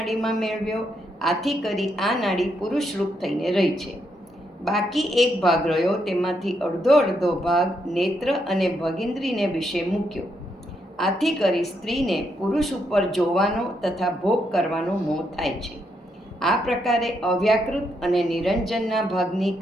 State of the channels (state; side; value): normal; both; correlation 0.78